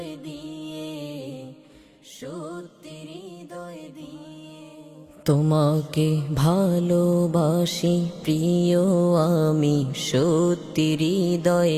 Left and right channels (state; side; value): identical; both; correlation 1.00